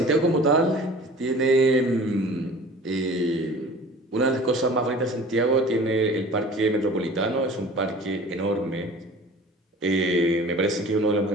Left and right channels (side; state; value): both; normal; correlation 0.43